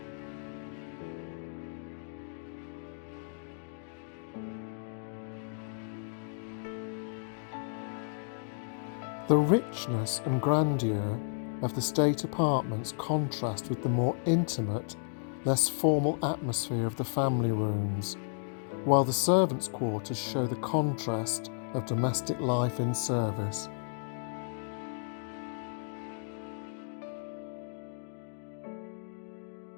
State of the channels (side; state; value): right; silent; digital silence